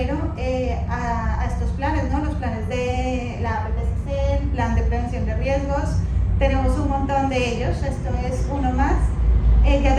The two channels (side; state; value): both; identical; correlation 1.00